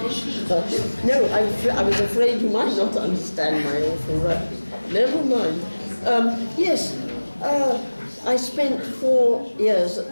No, I was afraid you might not understand my awful Russian. Never mind. Yes, I spent 4 years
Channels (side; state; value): both; inverted; correlation -1.00